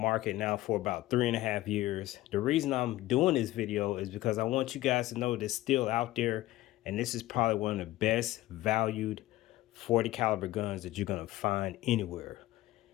now for about 3.5 years. The reason I'm doing this video is because I want you guys to know it's still out there, and this is probably one of the best valued 40 caliber guns that you're gonna find anywhere.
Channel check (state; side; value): quieter; right; 16.6 dB